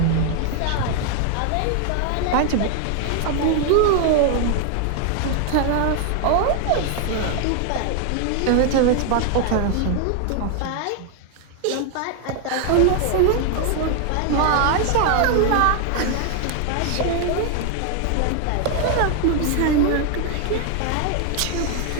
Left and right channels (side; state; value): both; different; correlation 0.00